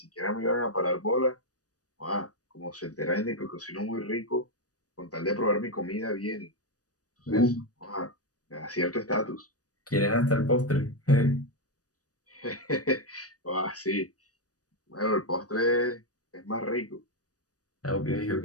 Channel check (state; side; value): late; right; 0.67 ms